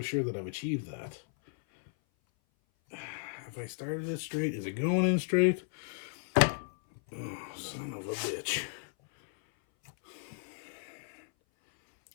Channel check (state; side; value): silent; right; 55 dB below the other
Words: sure that I've achieved that. Have I started it straight? Is it going in straight? Oh, son of a bitch.